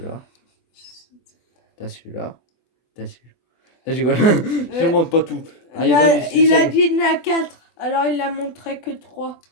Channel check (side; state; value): right; late; 24 ms